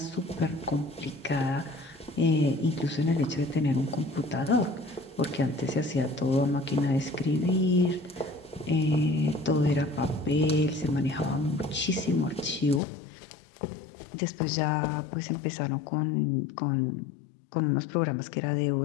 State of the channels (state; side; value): drops out; right; at 12.8 s